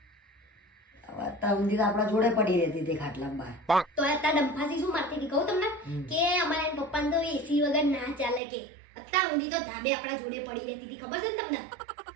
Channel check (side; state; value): left; drops out; at 8.4 s